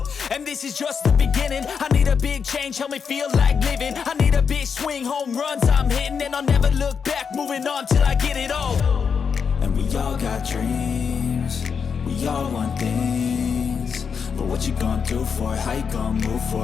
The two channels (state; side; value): quieter; right; 6.3 dB